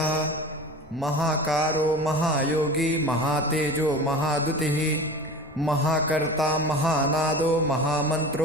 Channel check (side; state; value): both; normal; correlation 0.35